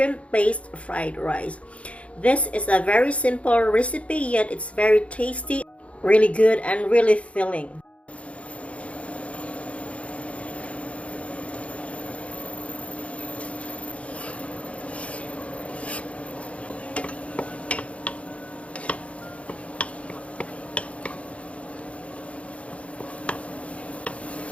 fried rice. This is a very simple recipe, yet it's very tasty, really good, and really filling.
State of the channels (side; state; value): right; late; 0.063 ms